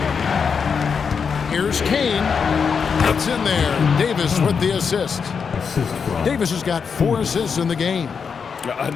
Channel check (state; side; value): quieter; right; 6.1 dB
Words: Here's Kane. It's in there. Davis with the assist. Davis has got 4 assists in the game.